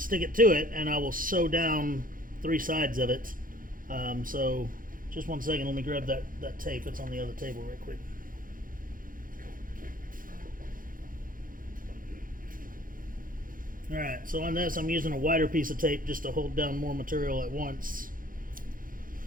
it to it, and I will sew down 3 sides of it. So just 1 second, let me grab that tape. It's on the other table right quick. Alright, so on this I'm using a wider piece of tape just to hold down more material at once.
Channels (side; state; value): left; late; 0.40 ms